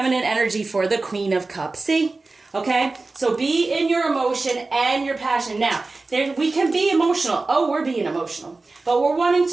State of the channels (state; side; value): quieter; left; 3.5 dB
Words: energy, for the Queen of Cups. See? Okay? So be in your emotion and your passion. Now, We can be emotional. Oh, we're being emotional. But we're wanting